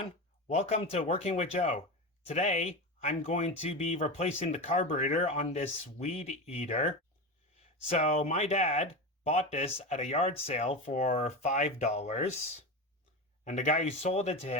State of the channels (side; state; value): both; normal; correlation 0.22